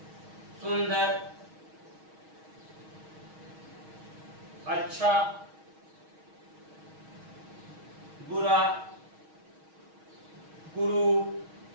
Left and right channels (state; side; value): late; left; 6.3 ms